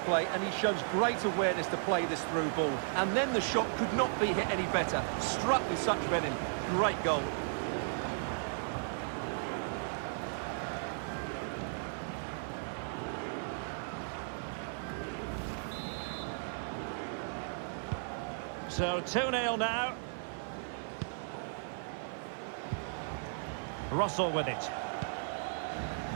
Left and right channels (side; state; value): left; silent; 54 dB below the other